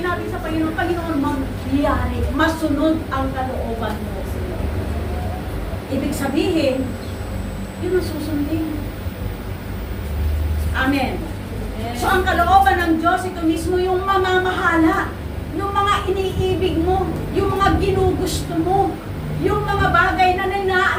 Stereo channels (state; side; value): identical; both; correlation 1.00